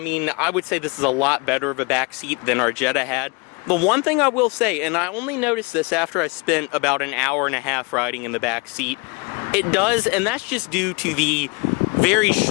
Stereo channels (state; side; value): quieter; right; 29.6 dB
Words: I would say this is a lot better of a back seat than our Jetta had. The one thing I will say, and I only noticed this after I spent about an hour and a half riding in the back seat, it does, and that's just due to the very